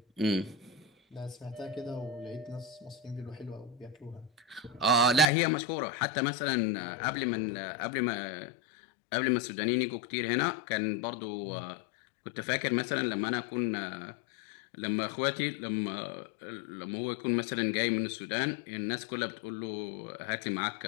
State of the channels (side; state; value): right; drops out; at 5.2 s